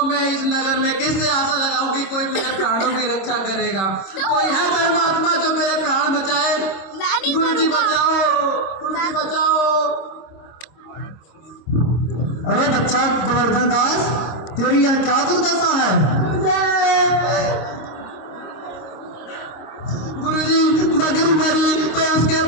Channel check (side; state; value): right; late; 26 ms